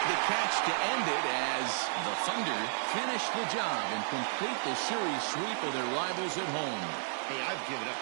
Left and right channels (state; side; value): silent; left; 56 dB below the other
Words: the catch to end it as the Thunder finish the job and complete the series sweep of their rivals at home. Hey, I've given up